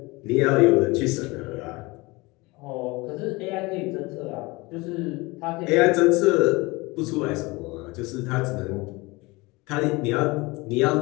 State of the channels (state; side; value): quieter; right; 23.6 dB